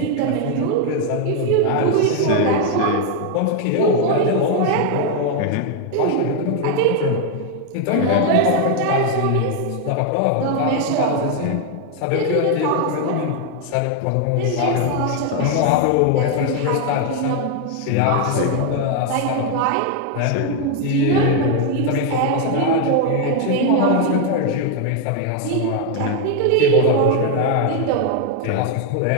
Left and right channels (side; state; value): both; different; correlation 0.01